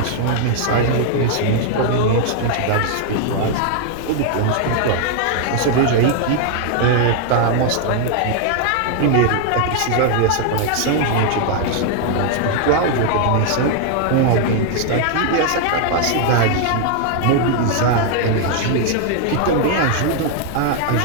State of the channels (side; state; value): both; different; correlation 0.00